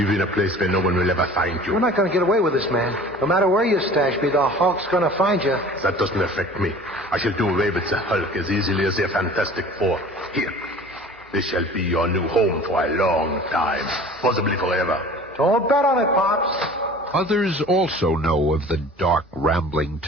in a place where no one will ever find you. We're not going to get away with this, man. No matter where you stash me, the Hulk's going to find you. That doesn't affect me. I shall do away with the Hulk as easily as the Fantastic Four. Here. This shall be your new home for a long time, possibly forever. Don't bet on it, Pops. Others also know of the dark, rambling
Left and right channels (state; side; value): normal; both; correlation 0.44